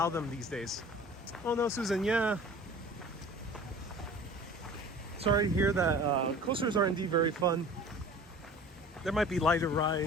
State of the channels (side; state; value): both; normal; correlation 0.43